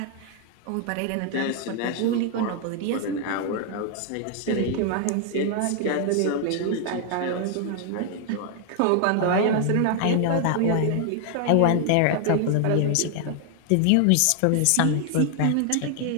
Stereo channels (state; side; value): different; both; correlation 0.00